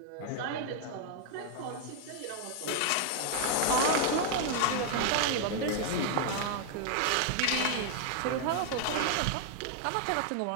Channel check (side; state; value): both; different; correlation 0.00